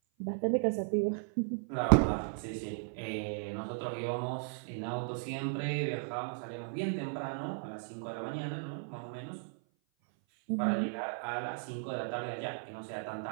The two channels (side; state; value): left; silent; 54 dB below the other